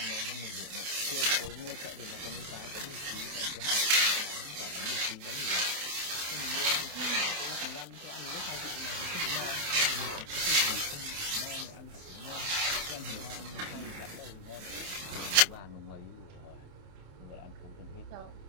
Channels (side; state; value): left; late; 28 ms